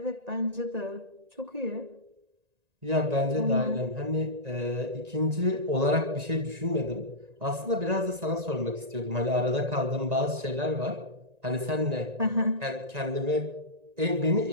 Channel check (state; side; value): late; left; 1.9 ms